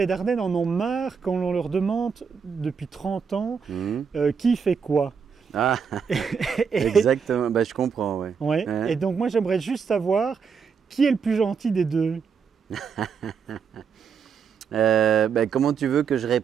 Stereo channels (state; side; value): quieter; left; 6.3 dB